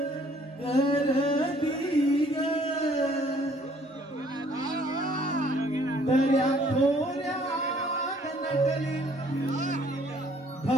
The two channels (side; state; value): both; normal; correlation 0.60